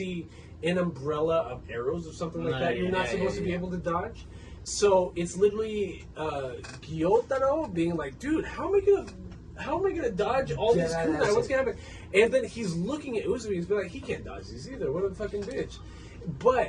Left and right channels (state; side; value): identical; both; correlation 1.00